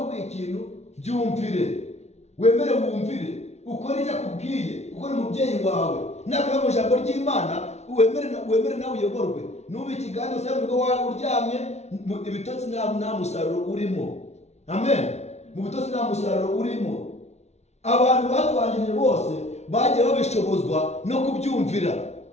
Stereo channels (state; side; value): late; right; 0.32 ms